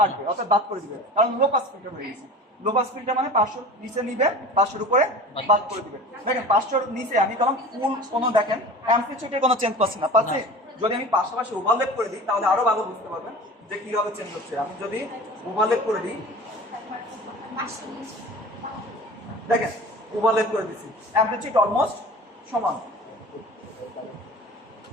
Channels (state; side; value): normal; both; correlation 0.38